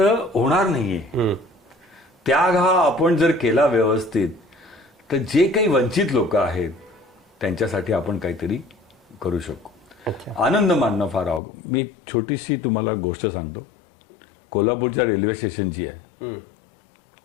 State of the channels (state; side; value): drops out; right; at 11.4 s